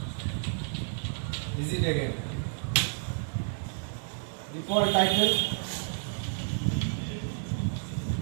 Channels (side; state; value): left; silent; 57 dB below the other